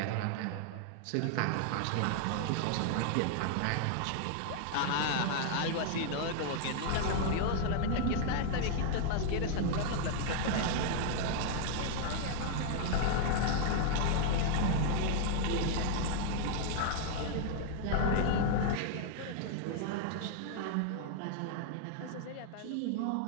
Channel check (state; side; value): different; both; correlation 0.00